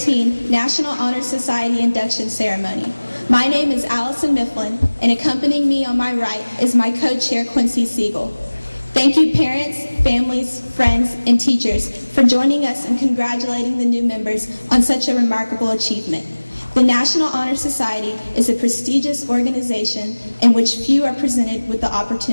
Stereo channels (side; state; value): both; inverted; correlation -1.00